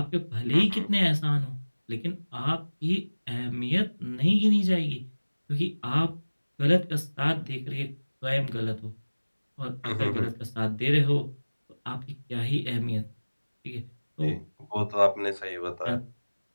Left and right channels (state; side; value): inverted; both; correlation -1.00